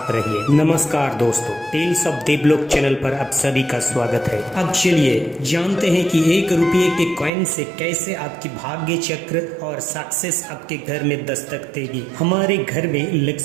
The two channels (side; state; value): left; drops out; at 7.3 s